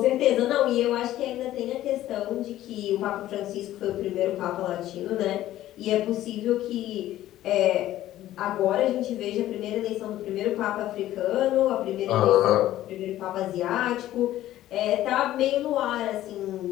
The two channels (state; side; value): quieter; right; 13.9 dB